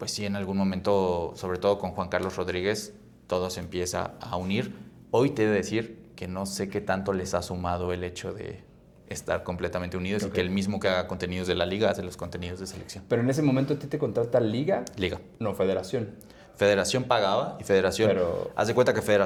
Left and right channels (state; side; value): identical; both; correlation 1.00